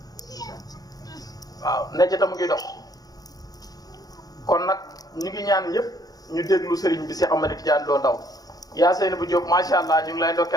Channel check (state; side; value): late; right; 0.18 ms